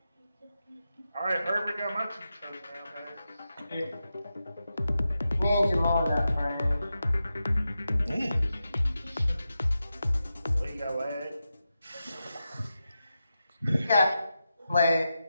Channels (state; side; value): inverted; both; correlation -0.90